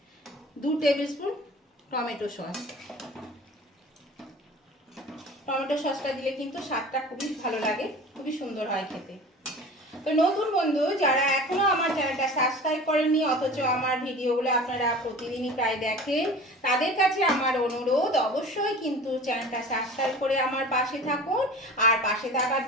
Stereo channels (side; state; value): both; normal; correlation 0.39